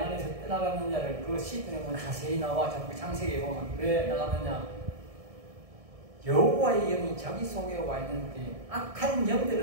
떠나갔느냐를 그 시편에 보면 자세히 나와. 자꾸 창세기에 보면 왜 나가느냐. 여호와의 영이 자기 속에 와 있는데 악한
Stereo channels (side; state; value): left; late; 1.7 ms